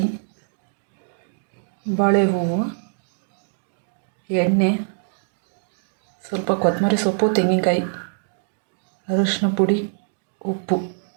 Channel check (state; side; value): silent; left; digital silence